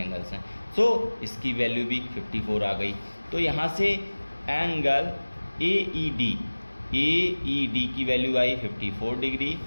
हैं। सो इसकी वैल्यू भी 54 आ गई। तो यहाँ से एंगल AED की value I 54 degree,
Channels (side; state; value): both; inverted; correlation -1.00